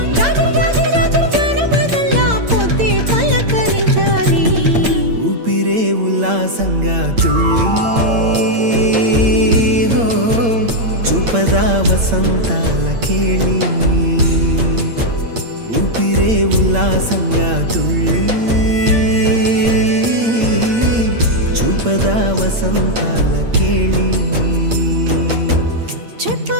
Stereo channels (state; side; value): late; left; 8.7 ms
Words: జాజర్ జాజర్ జాజర్ జానపదల్లా పొద్దే పలకరించాలి ఊపిరే ఉల్లాసంగా తుళ్ళి హో చూపదా వసంతాల కేళి ఊపిరే ఉల్లాసంగా తుళ్ళి చూపదా వసంతాల కేళి